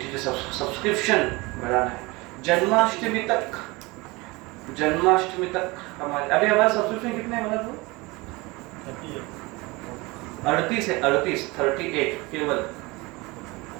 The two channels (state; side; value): quieter; left; 23.8 dB